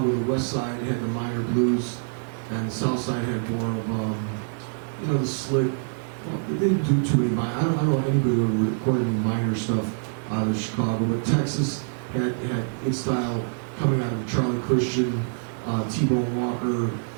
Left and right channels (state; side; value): silent; left; digital silence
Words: the West Side had the minor blues and the South Side had more of, you know, the slick. Well, they didn't do too many minor. I don't know anybody who recorded any minor stuff out of Chicago, but Texas had its style coming out of Charlie Christian, T-Bone Walker,